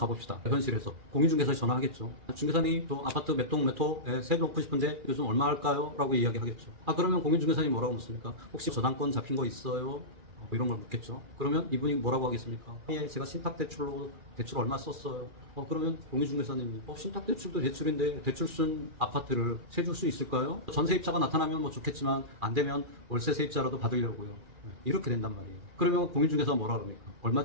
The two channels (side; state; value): left; late; 2.4 ms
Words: 현실에서. 공인중개사에 전화하겠죠. 중개사님, 또 아파트 몇 동 몇 호에 세 놓고 싶은데 요즘 얼마 할까요? 라고 이야기하겠죠. 그러면 공인중개사님 뭐라고 묻습니까? 혹시 저당권 잡힌 거 있어요? 이런 걸 묻겠죠. 그러면 이분이 뭐라고 하겠습니까? 예, 제가 신탁대출로 대출 얼마 썼어요. 그러면 공인중개사님이 신탁대출도 대출인데 대출 쓴 아파트를 세줄 수 있을까요? 전세입자가 나타나면 뭐 좋겠지만 안 되면 월세 세입자라도 받으려고요. 이렇게 된단 말이에요. 그러면 공인중개사가 뭐라 그럽니까?